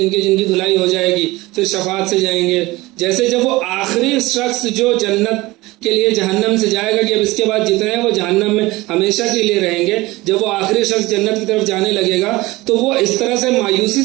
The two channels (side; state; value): left; quieter; 20.4 dB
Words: کی دھلائی ہو جائے گی, پھر شفاعت سے جائیں گے. جیسے جب وہ آخری شخص جو جنت کے لیے جہنم سے جائے گا کہ اب اس کے بعد جتنے ہیں وہ جہنم میں ہمیشہ کے لیے رہیں گے, جب وہ آخری شخص جنت کی طرف جانے لگے گا تو وہ اس طرح سے مایوسی